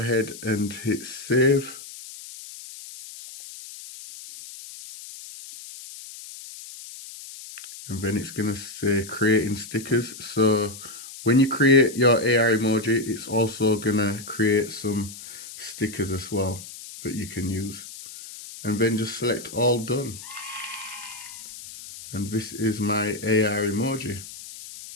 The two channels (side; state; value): left; noise; hiss, 14 dB below the sound